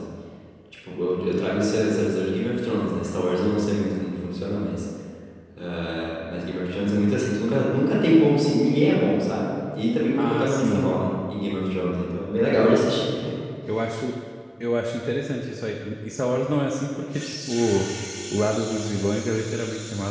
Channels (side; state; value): both; identical; correlation 1.00